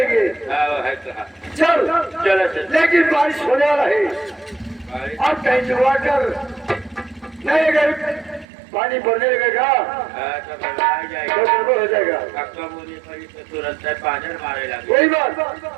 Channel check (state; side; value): drops out; left; at 8.5 s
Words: है कहा चल चलो चल। लेकिन बारिश होने वाला है और कहीं जुआ कर नहीं अगर पानी भरने लगेगा तो जाएगा तो गड़बड़ हो जाएगा। कक्का बोली पड़ी तो तुरंत से पाजर मारे लगे। कोई बात